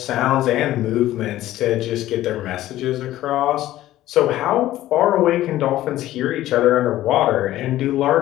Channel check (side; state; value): right; quieter; 14.6 dB